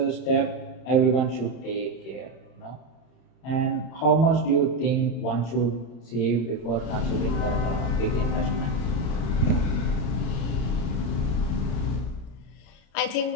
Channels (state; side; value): late; right; 34 ms